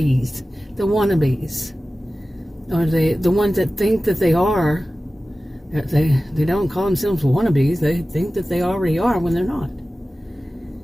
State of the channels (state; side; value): normal; both; correlation 0.96